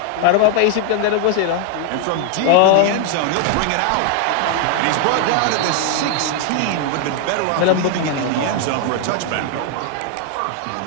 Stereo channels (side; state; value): both; different; correlation 0.00